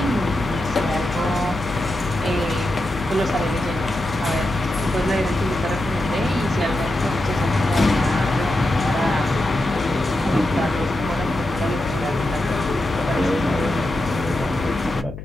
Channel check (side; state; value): left; noise; hum, 11 dB below the sound